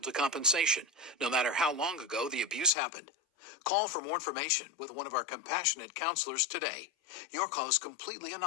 to compensation, no matter how long ago the abuse happened. Call for more information with one of our compassionate counselors today. Your call is completely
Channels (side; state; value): right; drops out; at 2.7 s